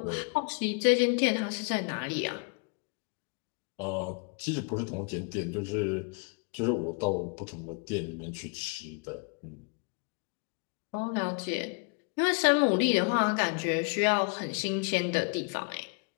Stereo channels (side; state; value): right; quieter; 36.2 dB